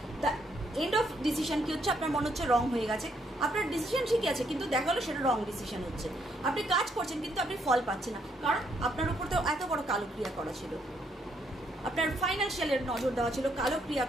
এন্ড অফ ডিসিশন কি হচ্ছে, আপনার মনে হচ্ছে রং হয়ে গেছে। আপনার ডিসিশন ঠিকই আছে, কিন্তু দেখা গেলো সেটা রং ডিসিশন হচ্ছে। আপনি কাজ করছেন কিন্তু আপনি ফল পাচ্ছেন না, কারণ আপনার উপর তো এত বড় কালো ক্রিয়া করা ছিল, আপনার ফাইন্যান্সিয়ালের নজর দেওয়া ছিল, কালো ক্রিয়া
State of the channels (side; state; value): both; normal; correlation 0.73